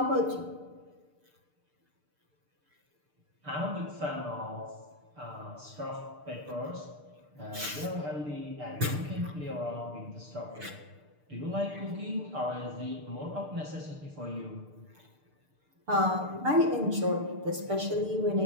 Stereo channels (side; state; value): left; late; 6.7 ms